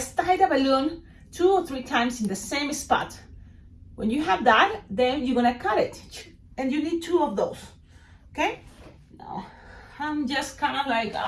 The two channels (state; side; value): identical; both; correlation 1.00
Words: tie the balloon 2 or 3 times in the same spot. When you have that, then you're gonna cut it. And you need 2 of those, okay? Now, I'm just kind of like,